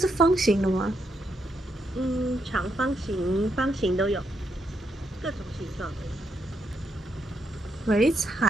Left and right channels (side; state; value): both; normal; correlation 0.79